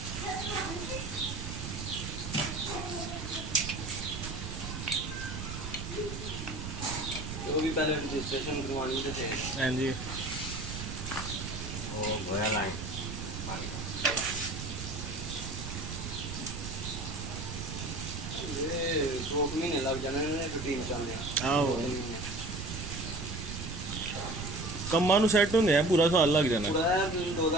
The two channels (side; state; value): right; noise; rumble, 7 dB below the sound